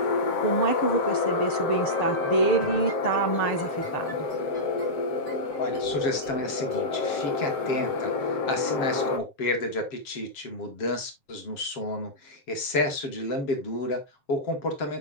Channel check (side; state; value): right; late; 7.3 ms